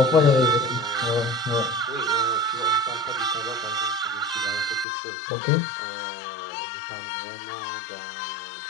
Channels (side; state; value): right; drops out; at 4.9 s